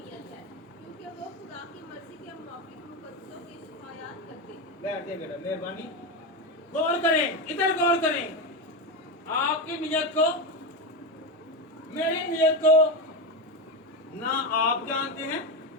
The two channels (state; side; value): normal; both; correlation 0.14